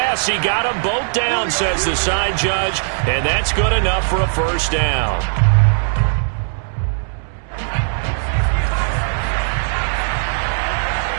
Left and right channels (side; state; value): left; silent; digital silence